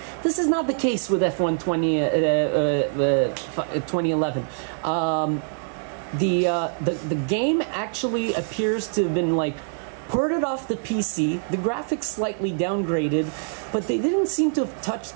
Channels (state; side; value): silent; left; digital silence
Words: This is not the case with F1 2011. The game actually appears to have been like ported off the PC, the graphics slightly downgraded, but they didn't seem to have touched